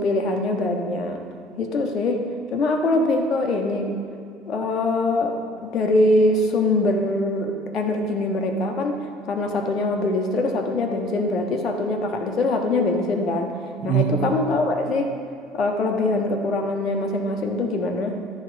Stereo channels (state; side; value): normal; both; correlation 0.52